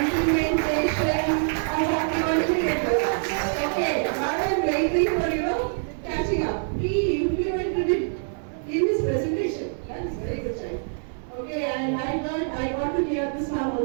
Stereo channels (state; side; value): silent; left; digital silence